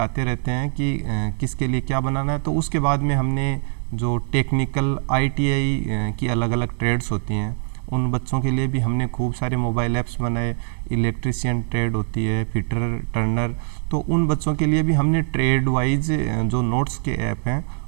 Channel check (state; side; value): silent; left; 64 dB below the other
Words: रहते हैं कि किसके लिए क्या बनाना है। तो उसके बाद में हमने जो टेक्निकल ITI की अलग अलग ट्रेड्स होती हैं उन बच्चों के लिए भी हमने खूब सारे मोबाइल ऐप्स बनाए। इलेक्ट्रिशियन ट्रेड होती है, फिटर, टर्नर, तो उन बच्चों के लिए भी हमने ट्रेड वाइज जो नोट्स के ऐप हैं